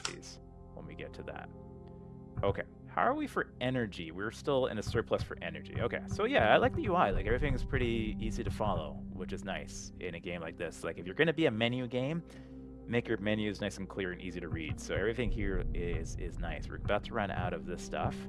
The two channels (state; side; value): identical; both; correlation 1.00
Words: when we get to that. Okay, how are we for energy? We're still in a surplus for energy. Okay, so yeah, I like the UI. Like, everything is pretty easy to follow, which is nice in a game like this. Like, if you're going to be a menu game, make your menus nice and clear and easy to read. So everything here is nice. We're about to run out of this stuff.